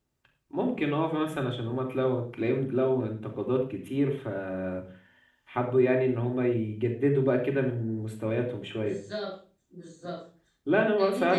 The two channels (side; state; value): both; identical; correlation 1.00